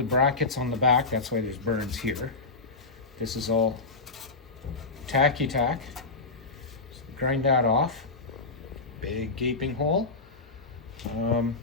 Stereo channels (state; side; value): quieter; right; 3.8 dB